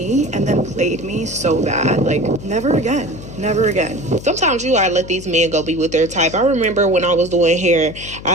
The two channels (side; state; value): left; noise; hum, 14 dB below the sound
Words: and then played me so bad. Like, never again. Never again. Sometimes you gotta let these men go be with their type. I remember when I was doing hair,